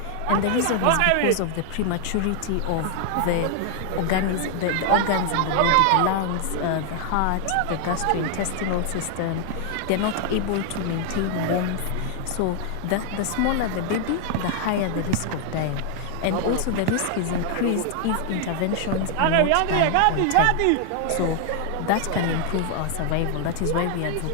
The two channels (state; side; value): different; both; correlation 0.00